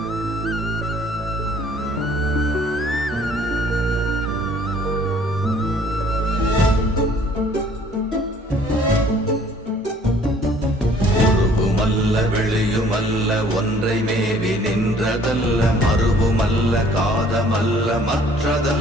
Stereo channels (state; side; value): normal; both; correlation 0.57